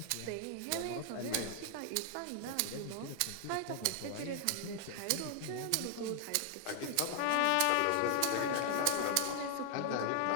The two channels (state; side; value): different; both; correlation 0.00